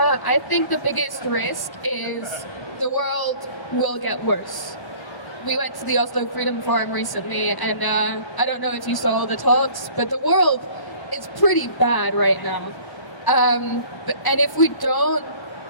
think the biggest risk is the world will get worse. We went to the Oslo Freedom Forum recently, and I don't know if you saw the talks, but the world is pretty bad right now. And if we don't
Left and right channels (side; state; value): right; late; 1.1 ms